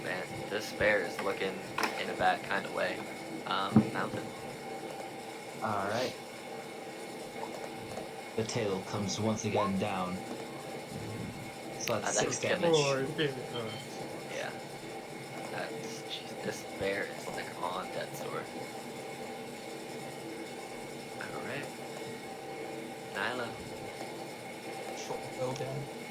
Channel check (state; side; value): identical; both; correlation 1.00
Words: man, this bear is looking in a bad kind of way. Mountain. Alright. The tail comes once again down. So that's That 6 could kill damage. Yeah. Jeez, this bear is like on death's door. Alright. Nyla. Short bow down.